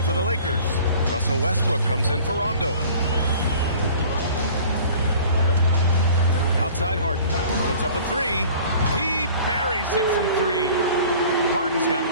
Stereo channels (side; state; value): both; inverted; correlation -0.47